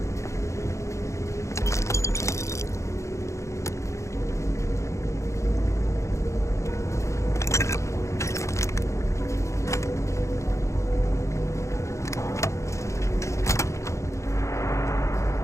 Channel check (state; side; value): late; right; 0.14 ms